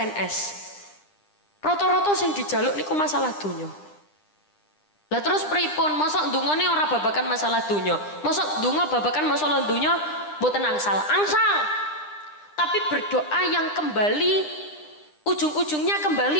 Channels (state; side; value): late; right; 9.9 ms